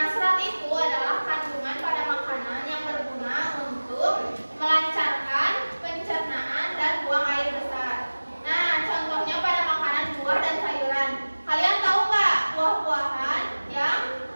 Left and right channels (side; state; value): both; inverted; correlation -1.00